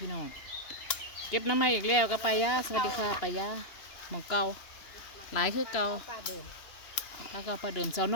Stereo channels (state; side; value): late; right; 2.9 ms